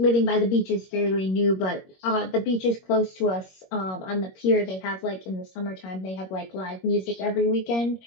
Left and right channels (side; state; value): right; late; 21 ms